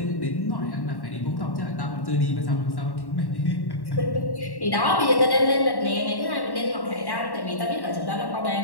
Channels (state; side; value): late; right; 1.1 ms